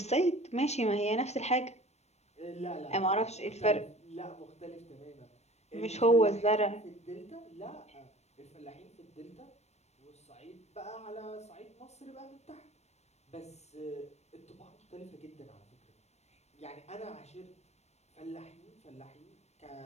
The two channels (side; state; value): right; late; 0.32 ms